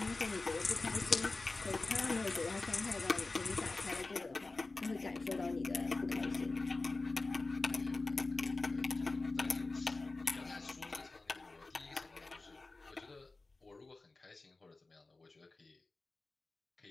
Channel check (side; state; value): right; quieter; 3.4 dB